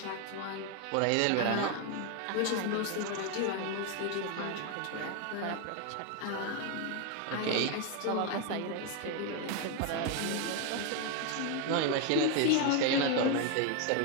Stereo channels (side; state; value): both; different; correlation 0.01